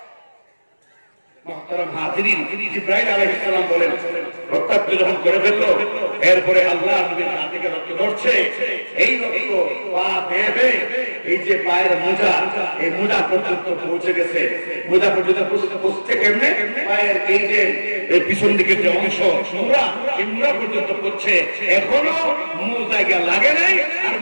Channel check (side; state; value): both; inverted; correlation -1.00